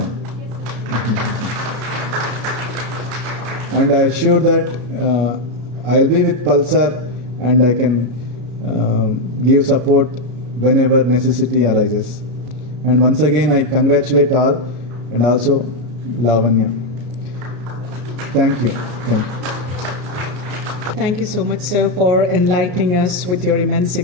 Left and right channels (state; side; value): late; left; 33 ms